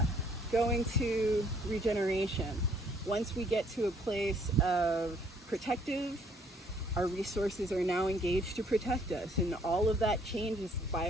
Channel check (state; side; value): normal; both; correlation 0.63